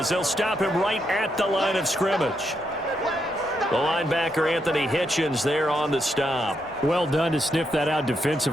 they'll stop him right at the line of scrimmage. The linebacker Anthony Hitchens there on the stop. Well done to sniff that out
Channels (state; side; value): normal; both; correlation 0.80